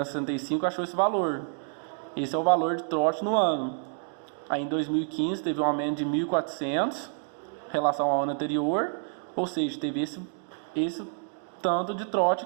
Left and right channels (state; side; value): silent; left; digital silence